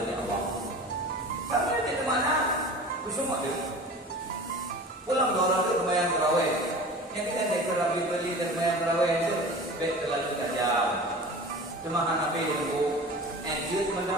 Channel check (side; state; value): both; normal; correlation 0.37